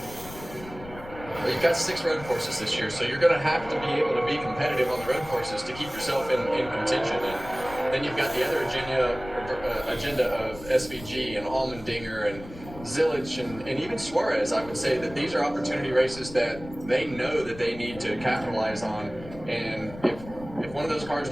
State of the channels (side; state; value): left; noise; rumble, 15 dB below the sound